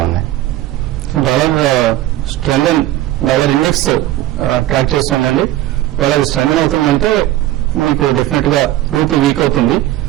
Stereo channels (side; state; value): left; quieter; 14.6 dB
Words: ఉన్నాయి. డాలర్ స్ట్రెంగ్, డాలర్ ఇండెక్స్ ట్రాక్ చేస్తుందండి. ఒకవేళ స్ట్రెంగ్ అవుతుందంటే మీకు డెఫినెట్ గా రూపీ వీక్ అవుతుంది.